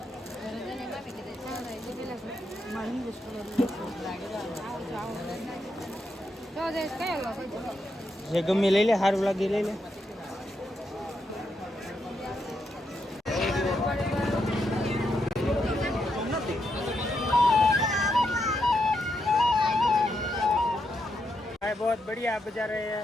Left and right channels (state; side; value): normal; both; correlation 0.82